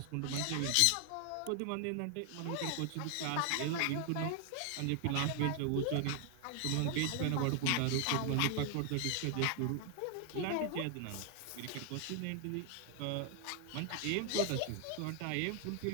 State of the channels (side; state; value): both; different; correlation 0.00